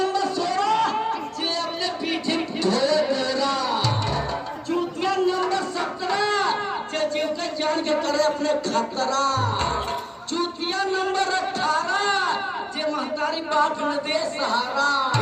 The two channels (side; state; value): both; identical; correlation 1.00